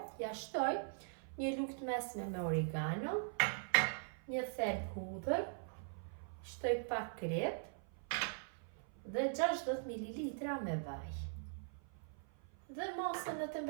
Ja shtoj një lugë të mesme me oregano, një thelb hudhër, shtoj pak krip dhe 60 ml me vaj. Dhe masën në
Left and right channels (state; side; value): silent; left; 50 dB below the other